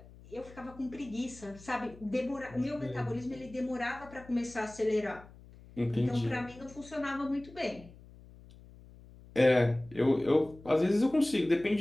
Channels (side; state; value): left; noise; hum, 21 dB below the sound